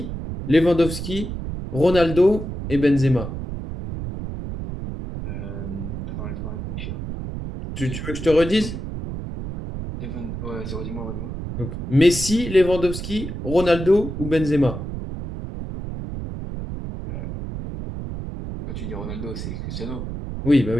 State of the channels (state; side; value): noise; right; rumble, 6 dB below the sound